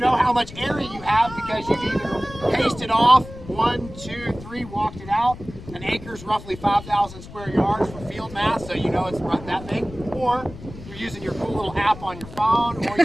how much area you have because you've either pasted off 1, 2, 3, walked it out. An acre is roughly 5,000 square yards for field mass, so you know it's that big. Or you're using your cool little app on your phone, or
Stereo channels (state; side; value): noise; left; rumble, 15 dB below the sound